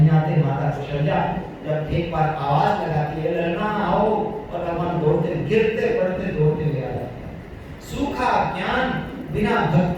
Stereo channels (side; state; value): both; identical; correlation 1.00